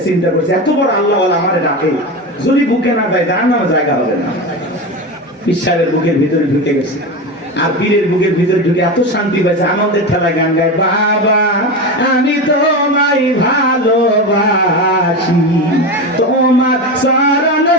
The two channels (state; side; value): normal; both; correlation 0.21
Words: চিন্তা করছে এত বড় আল্লাহ আমারে ডাকে, যদি বুকে না যায় যার নামে জায়গা হবে না। ঈশ্বরের বুকের ভিতরে ঢুকে গেছে, আর পীরের বুকের ভিতরে ঢুকে এত শান্তি পাইছে, আনন্দের ঠেলায় গান গায়, বাবা আমি তোমায় ভালোবাসি, তোমার চরণ